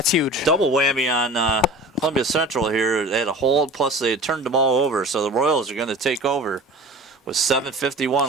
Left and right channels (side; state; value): both; normal; correlation 0.39